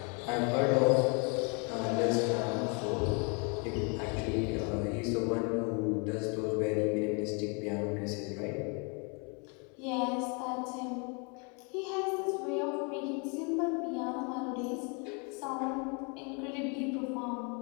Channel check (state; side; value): quieter; right; 34.7 dB